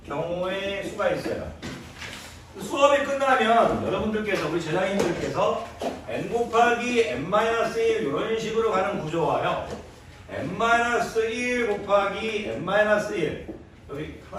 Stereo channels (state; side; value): identical; both; correlation 1.00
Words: 경우의 수가 있어요. 수업이 끝나면 여러분들께서 우리 제자님들께서 n 곱하기 n-1 이런 식으로 가는 구조와요. n-1 곱하기 n-1 여기